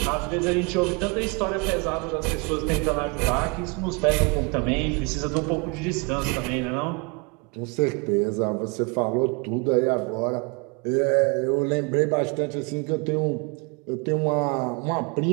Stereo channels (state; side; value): quieter; left; 30.4 dB